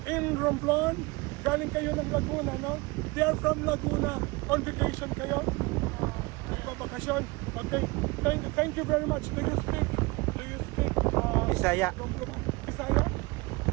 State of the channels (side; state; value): left; quieter; 24.8 dB